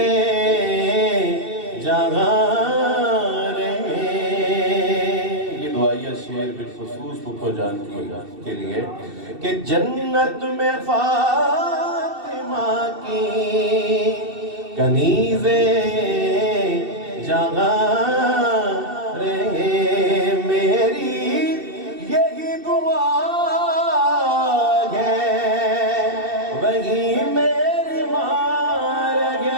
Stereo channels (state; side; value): late; left; 2.7 ms